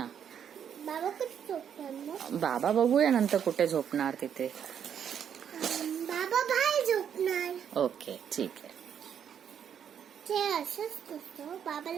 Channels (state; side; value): quieter; left; 8.5 dB